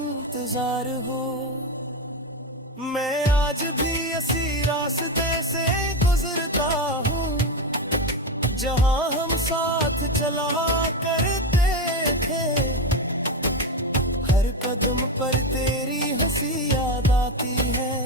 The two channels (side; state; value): both; normal; correlation 0.14